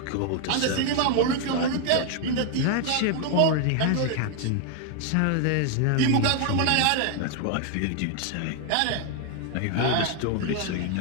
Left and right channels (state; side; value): different; both; correlation 0.00